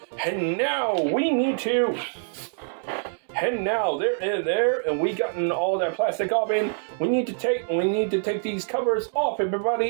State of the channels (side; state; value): left; silent; digital silence